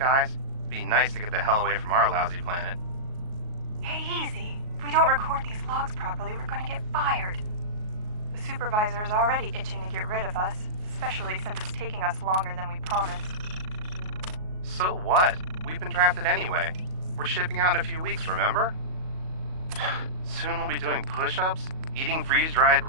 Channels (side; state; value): left; late; 38 ms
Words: Be nice to get the hell away from our lousy planet. Hey, easy. If we don't record these logs properly, we're gonna get fired. The supervisor is already itching to get rid of us, especially since it's taking us longer than we promised. So what? We've been drafted anyway. We're shipping out in a few weeks, remember? Soon we'll be doing push-ups, eating freeze-dried